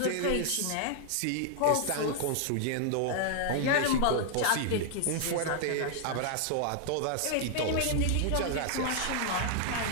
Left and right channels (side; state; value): both; different; correlation 0.00